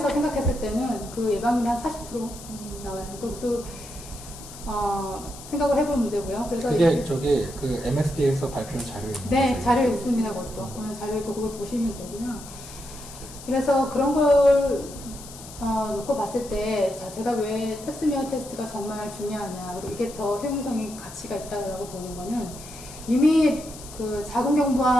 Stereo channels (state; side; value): noise; left; hiss, 15 dB below the sound